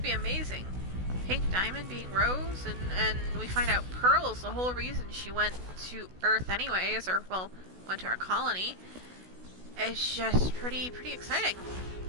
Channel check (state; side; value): late; left; 16 ms